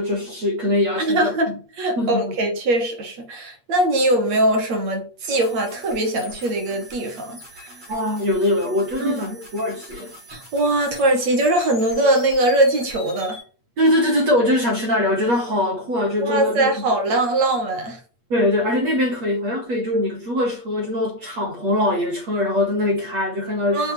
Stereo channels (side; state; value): left; late; 8.4 ms